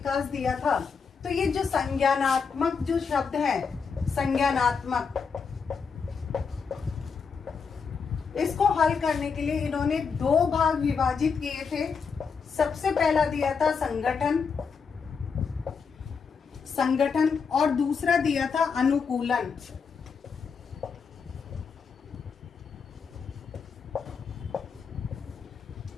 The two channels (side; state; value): right; quieter; 5.7 dB